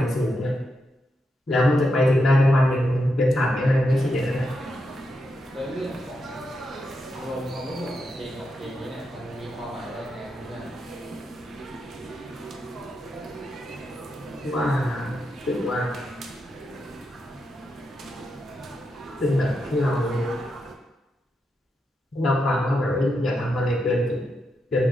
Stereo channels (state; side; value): normal; both; correlation 0.85